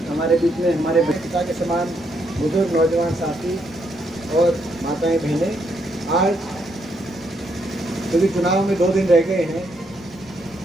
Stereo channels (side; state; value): both; normal; correlation 0.76